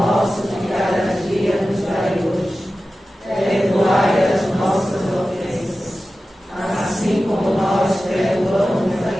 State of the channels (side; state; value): both; normal; correlation 0.94